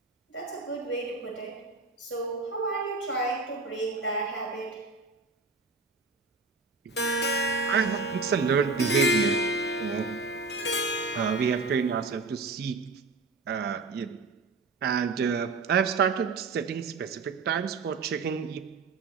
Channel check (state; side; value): quieter; left; 3.9 dB